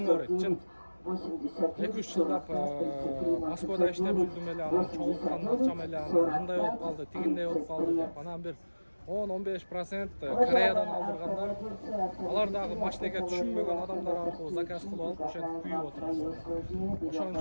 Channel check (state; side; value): inverted; both; correlation -1.00